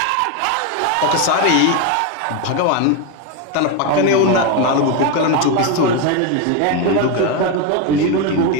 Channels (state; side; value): different; both; correlation 0.03